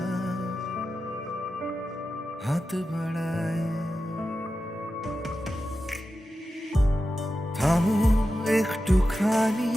হাত বাড়ায়, থামো একটুখানি,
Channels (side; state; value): both; normal; correlation 0.92